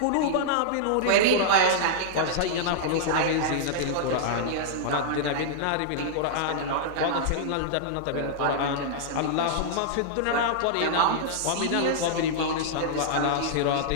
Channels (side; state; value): both; different; correlation -0.02